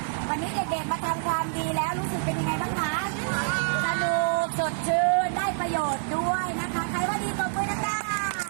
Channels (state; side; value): silent; left; 60 dB below the other